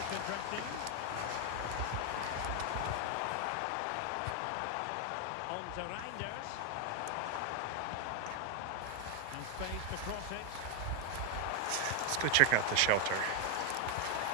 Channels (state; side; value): different; both; correlation 0.00